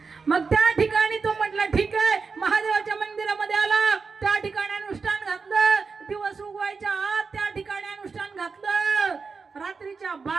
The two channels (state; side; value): quieter; left; 4.9 dB